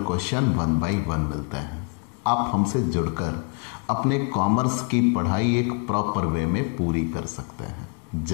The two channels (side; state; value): right; quieter; 39.1 dB